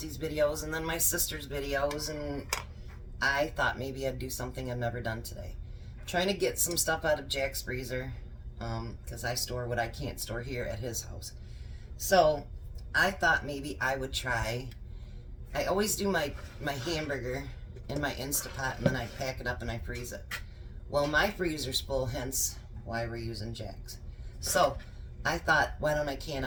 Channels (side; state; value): both; identical; correlation 1.00